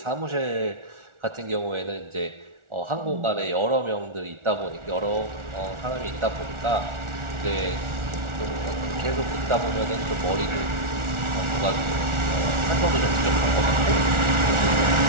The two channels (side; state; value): left; late; 1.4 ms